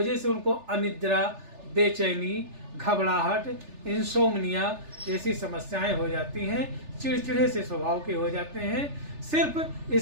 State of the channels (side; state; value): left; late; 3.4 ms